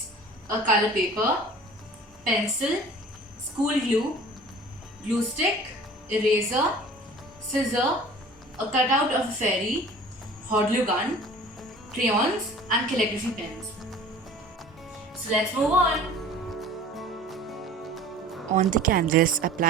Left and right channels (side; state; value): both; normal; correlation 0.45